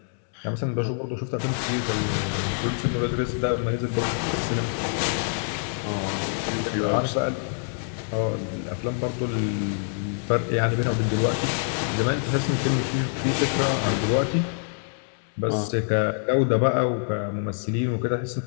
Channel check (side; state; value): right; silent; digital silence